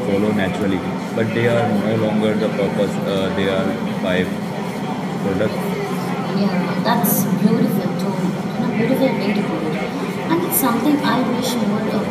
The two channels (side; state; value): both; identical; correlation 1.00